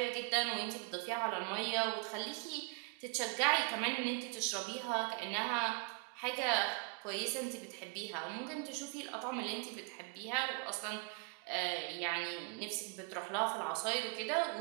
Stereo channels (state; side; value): quieter; left; 28.5 dB